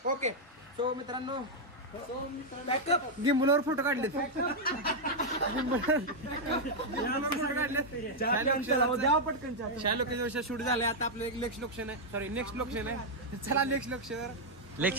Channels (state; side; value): normal; both; correlation -0.02